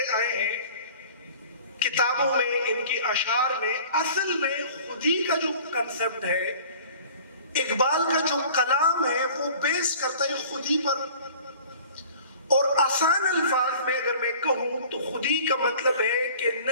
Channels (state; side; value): inverted; both; correlation -0.46